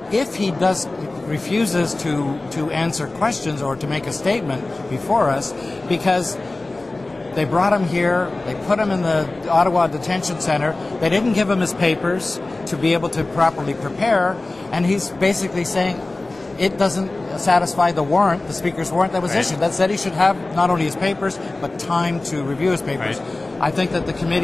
if he refuses to answer questions or to make a statement before us, because they brought him here, they put him in the Ottawa Detention Centre, they didn't give him his papers to be able to properly prepare, and he's basically saying it doesn't satisfy the warrant, the Speaker's warrant that was issued. That said he should have not only his papers, but time to review his papers. Right. I think that the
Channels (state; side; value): quieter; right; 3.0 dB